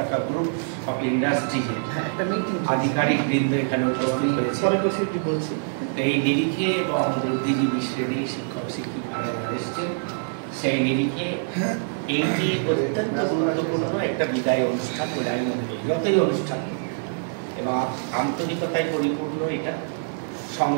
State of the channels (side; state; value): left; silent; digital silence